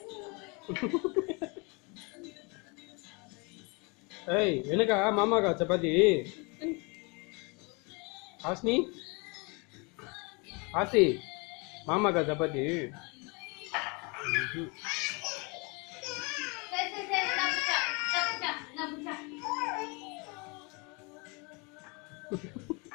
ஏய் எனக்கா மாமாக்கா சப்பாத்தி? ஆஸ்னி ஆசி மாமாக்கா சப்பாத்தி?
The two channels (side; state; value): right; quieter; 30.3 dB